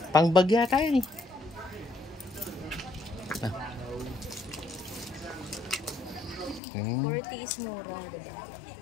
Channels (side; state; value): right; drops out; at 6.6 s